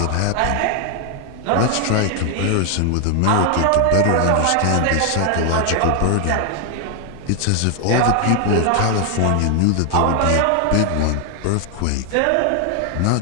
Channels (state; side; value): different; both; correlation 0.00